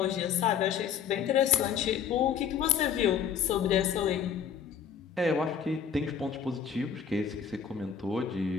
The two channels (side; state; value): right; quieter; 7.5 dB